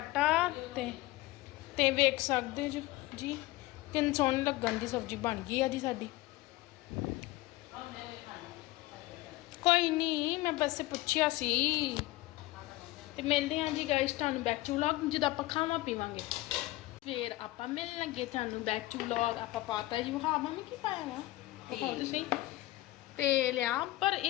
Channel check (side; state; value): right; quieter; 18.2 dB